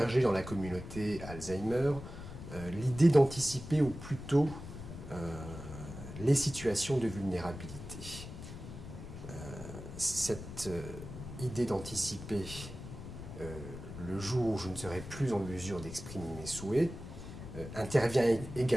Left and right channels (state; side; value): noise; left; rumble, 11 dB below the sound